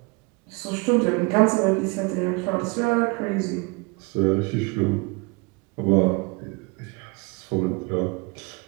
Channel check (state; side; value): quieter; left; 28.7 dB